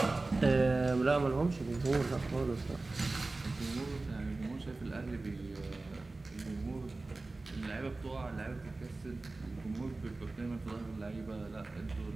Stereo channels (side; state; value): left; quieter; 3.3 dB